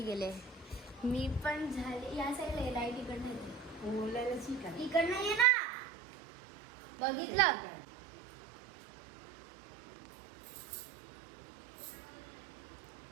गेले. मी पण झाले. या साईडला लाईट इकडनं येते. इकडनं ये ना. बघितलं?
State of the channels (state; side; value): drops out; left; at 5.5 s